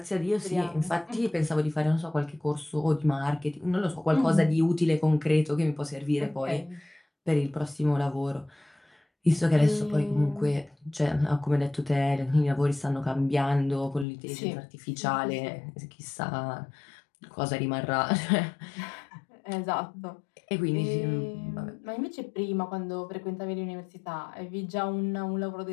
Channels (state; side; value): drops out; right; at 14.1 s